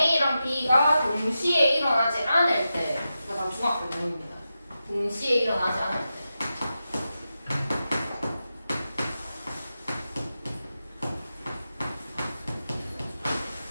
B가 동시에 일어나지 않을 때, 그러니까 다 중학교 내용입니다. 동시에 일어나지 않을 때.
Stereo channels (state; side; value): inverted; both; correlation -0.90